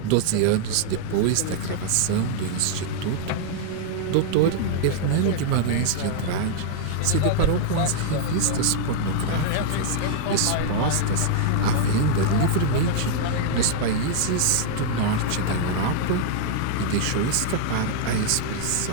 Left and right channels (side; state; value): both; different; correlation -0.01